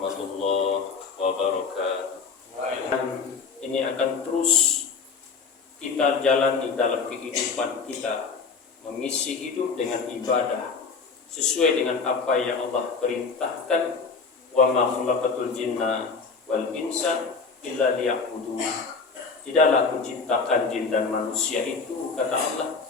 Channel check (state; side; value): quieter; right; 4.9 dB